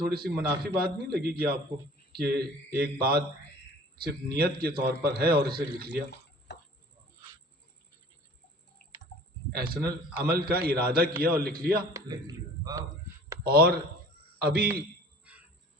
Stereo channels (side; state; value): both; normal; correlation 0.47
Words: سی منافی بات نہیں لگے گی آپ کو کہ ایک بات صرف نیت کے طور پر ہے اور اسے لکھ لیا؟ احسن عمل کا ارادہ کیا اور لکھ لیا، اور ابھی